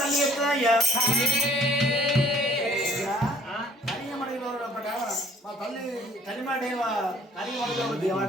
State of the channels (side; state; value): both; normal; correlation 0.57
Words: తల్లి చెప్తుందా అయ్యా మా తల్లి తల్లిమాట